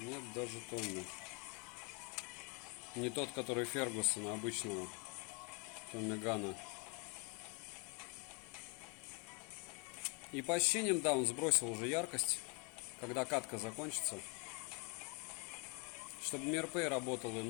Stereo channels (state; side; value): quieter; right; 33.4 dB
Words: даже Томми. Не тот, который Фергусона обычного. Томми Гана. И по ощущениям, да, он сбросил уже яркость. Когда катка закончится. Чтобы MirPay работал,